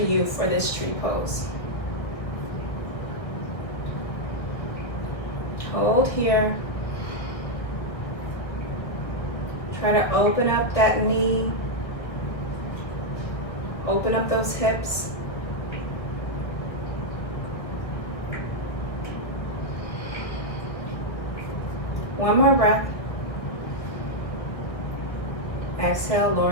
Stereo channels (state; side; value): late; right; 1.8 ms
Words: for this tree pose. Hold here. Try to open up that knee. Open up those hips. One more breath. Exhale, lower